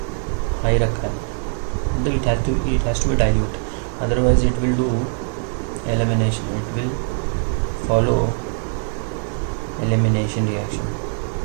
हाई रखा है, मतलब it has to be dilute, otherwise it will do elimination, it will follow elimination reaction.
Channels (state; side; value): silent; left; 55 dB below the other